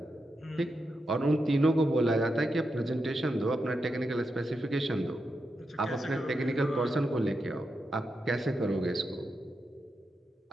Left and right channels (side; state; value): both; normal; correlation 0.86